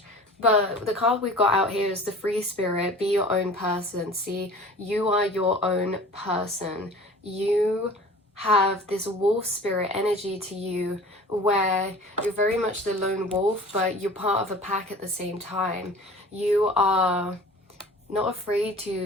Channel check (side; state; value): both; normal; correlation 0.43